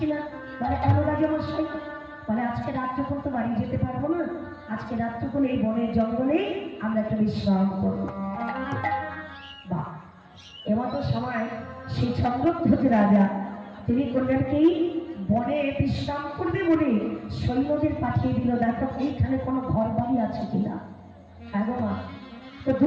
বলে কেন রাজা মশাই? বলে আজকে রাত্রিক্ষণ তো বাড়ি যেতে পারবো না, আজকে রাত্রিক্ষণ এই বনের জঙ্গলে আমরা একটা বিশ্রাম করবো। বাহ, এমতো সময় সেই চন্দ্রধ্বজ রাজা তিনি করলেন কি, বনে বিশ্রাম করবে বলে সৈন্যদের পাঠিয়ে দিল, দেখো এইখানে কোনো ঘর বাড়ি আছে কিনা। হ্যাঁ গো মা, তো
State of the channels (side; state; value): both; identical; correlation 1.00